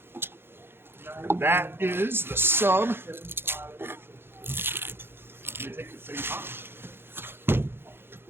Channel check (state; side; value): late; left; 0.11 ms